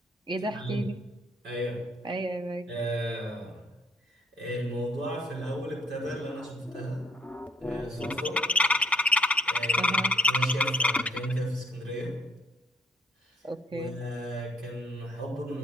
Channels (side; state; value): both; normal; correlation 0.64